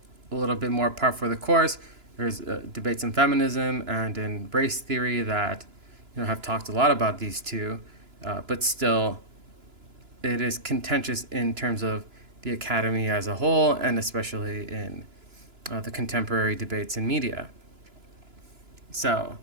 a little bit more par for the course. There's debates in feminism and in race theory that have talked a lot about these two, but still it is contentious in terms of the academy as a whole, and especially in the contemporary debates in media. So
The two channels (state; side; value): late; left; 2.9 ms